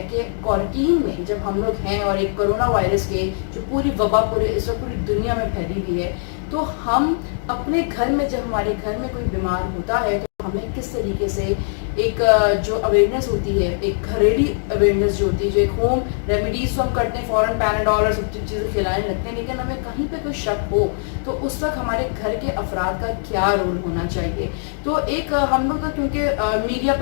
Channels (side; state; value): right; silent; digital silence